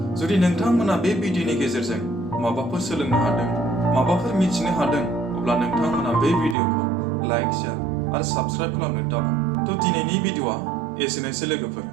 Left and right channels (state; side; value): drops out; left; at 6.6 s